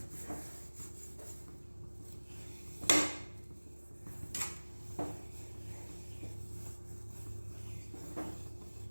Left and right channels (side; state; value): both; inverted; correlation -1.00